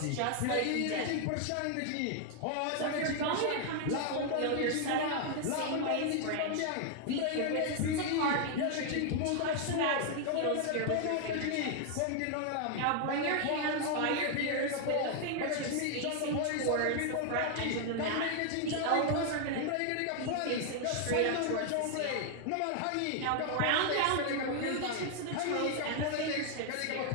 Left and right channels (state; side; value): different; both; correlation 0.00